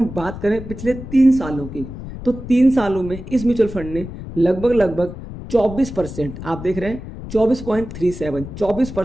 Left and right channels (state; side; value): noise; left; rumble, 11 dB below the sound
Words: बात करें पिछले 3 सालों की, तो 3 सालों में इस म्यूचुअल फंड ने लगभग 24%, आप देख रहे हैं